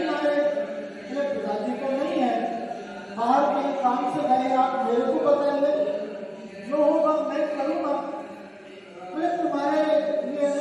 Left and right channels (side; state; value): both; identical; correlation 1.00